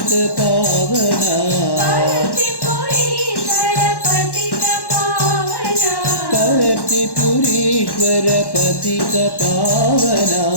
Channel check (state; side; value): late; right; 1.1 ms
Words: पावना पर्तिपुरीश्वर पतित पावना